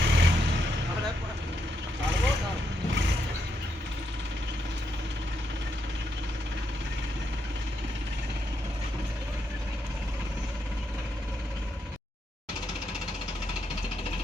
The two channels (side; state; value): both; normal; correlation 0.80